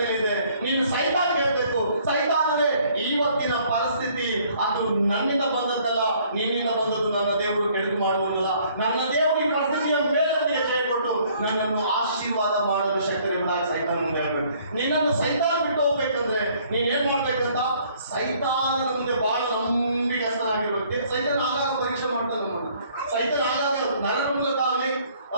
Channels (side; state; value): both; inverted; correlation -0.61